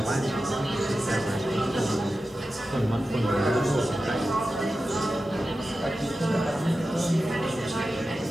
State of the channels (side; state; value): both; normal; correlation 0.93